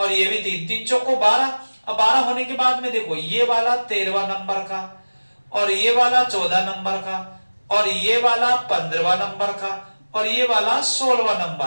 ये भी 3, 3 चौको 12। अब 12 होने के बाद में देखो ये वाला 13वां नंबर का, और ये वाला 14 नंबर का, और ये वाला 15वां नंबर का, और ये वाला 16वां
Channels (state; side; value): inverted; both; correlation -1.00